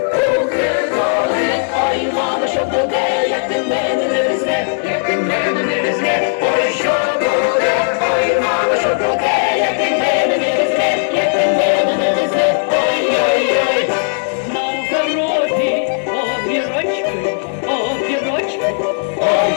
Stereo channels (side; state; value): right; silent; digital silence